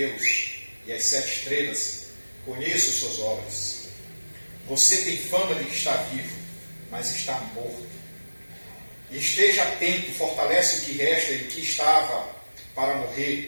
e as 7 estrelas. Conheço suas obras. Você tem fama de que está vivo, mas está morto. E esteja atento, fortalece o que resta e o que estava para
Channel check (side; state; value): both; inverted; correlation -1.00